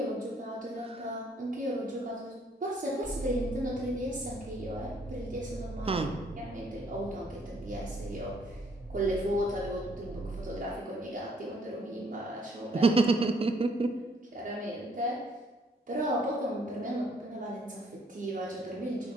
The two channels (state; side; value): normal; both; correlation 0.65